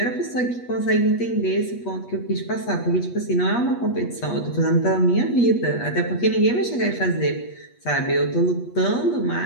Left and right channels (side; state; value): right; late; 8.3 ms